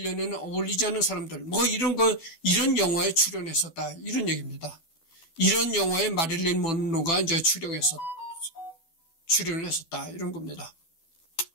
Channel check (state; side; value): late; right; 12 ms